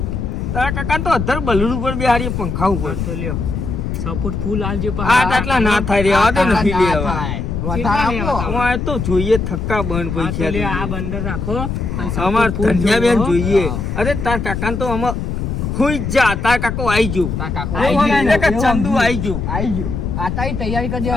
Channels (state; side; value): noise; left; rumble, 3 dB below the sound